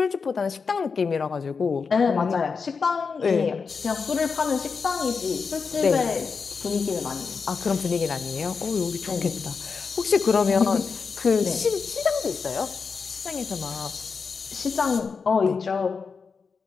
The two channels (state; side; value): quieter; right; 5.2 dB